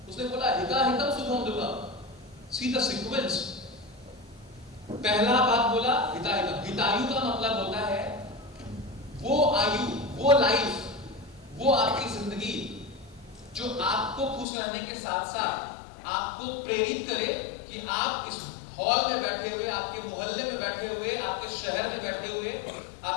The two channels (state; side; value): drops out; right; at 14.5 s